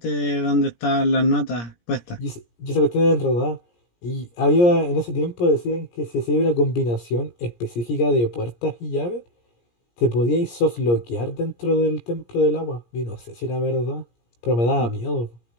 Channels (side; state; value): right; late; 17 ms